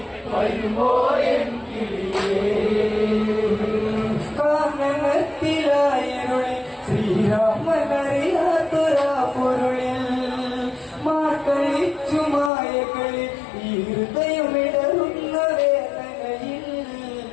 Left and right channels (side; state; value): right; drops out; at 12.5 s